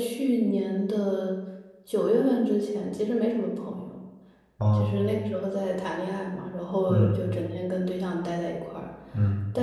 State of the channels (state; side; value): identical; both; correlation 1.00